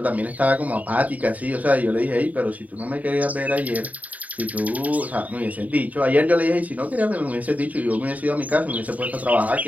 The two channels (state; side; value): late; left; 0.073 ms